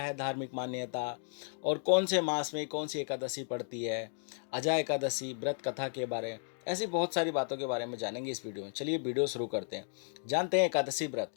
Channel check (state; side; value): silent; right; 55 dB below the other